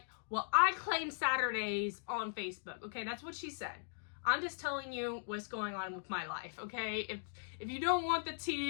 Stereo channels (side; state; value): right; silent; digital silence